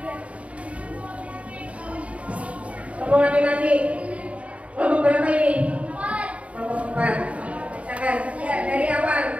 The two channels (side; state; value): left; late; 0.065 ms